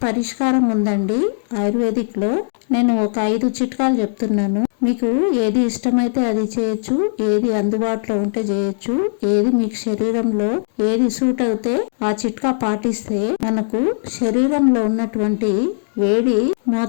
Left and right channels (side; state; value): right; silent; digital silence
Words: పరిష్కారం ఉందండి ఆయుర్వేదిక్ లో. నేను ఒక 5 చిట్కాలు చెప్తున్నాను. మీకు ఏది ఇష్టమైతే అది చేయొచ్చు, ఏది అందుబాటులో ఉంటే చేయొచ్చు, ఏది మీకు శరీరంలో ఏది సూట్ అవుతే ఆ చిట్కా పాటిస్తే మనకు శరీరంలో ఉన్నటువంటి వేడి